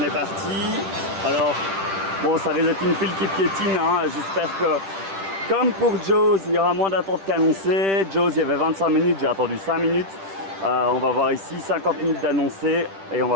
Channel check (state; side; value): late; left; 10 ms